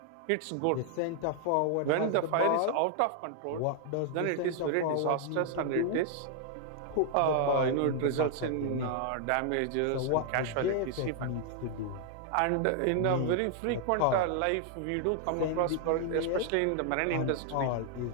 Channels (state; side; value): different; both; correlation 0.00